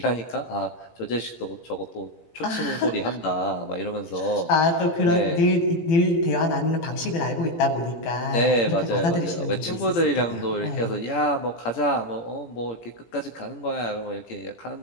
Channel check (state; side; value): late; right; 17 ms